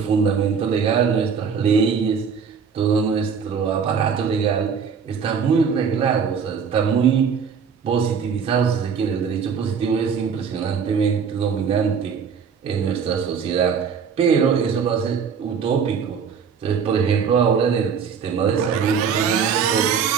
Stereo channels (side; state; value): left; quieter; 6.5 dB